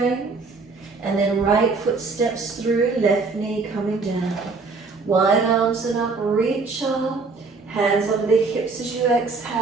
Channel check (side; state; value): left; quieter; 4.2 dB